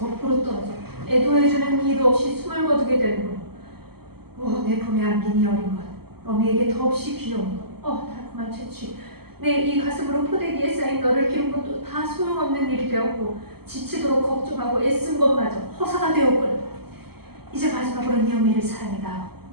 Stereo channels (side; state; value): left; late; 0.96 ms